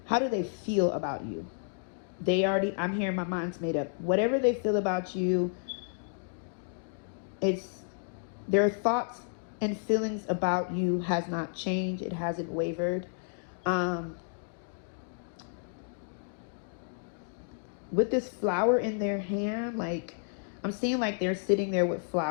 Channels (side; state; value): right; silent; digital silence